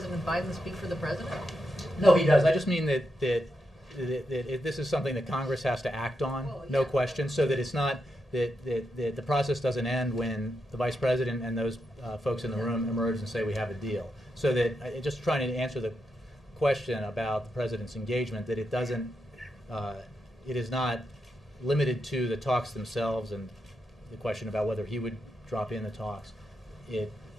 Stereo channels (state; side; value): normal; both; correlation 0.85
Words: Biden speak for the president? No, he does. I just mean that this is something that Congress has to act on, Well, no yeah. question, so that it's not that the process doesn't end when the Vice President and those folks in the room emerge and say we have a deal. So that, just trying to answer the question about the President's engagement, that it doesn't, it is not limited to the talks themselves and the question about whether he would drop in the talks. It